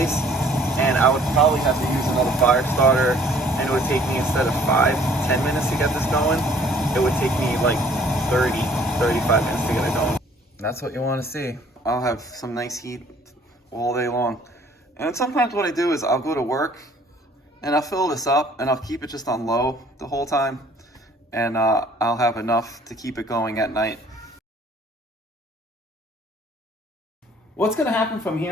and I would probably have to use another fire starter, and it would take me, instead of 5-10 minutes to get this going, it would take me like 30-35 minutes to get it going. That's what you want to see. I'll have some nice heat all day long. And sometimes what I do is I'll go to work and I'll fill this up and I'll keep it just on low the whole time, and I'll have enough to keep it going at night. What's going to happen from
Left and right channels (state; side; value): normal; both; correlation 0.57